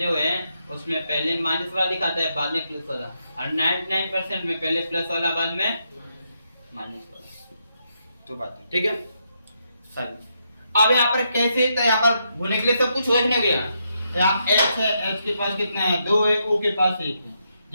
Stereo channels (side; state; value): both; inverted; correlation -0.80